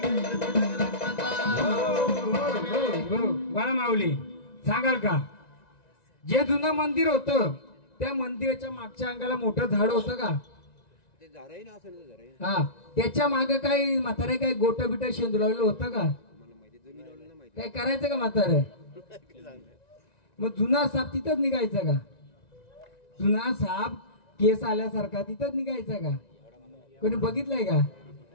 बाळा माऊली सांगाल का, जे जुनं मंदिर होतं त्या मंदिराच्या मागच्या अंगाला मोठं झाड होतं का? हा, त्याच्या मागे काही म्हातारे काय गोट बिट शेंदुलावलेलं होतं का? काय करायचं का म्हातारे? मग जुना साप तिथंच निघायचा का? जुना साप केस आल्यासारखा तिथंच निघायचा का? कोणी बघितलंय का?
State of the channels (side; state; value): right; late; 1.9 ms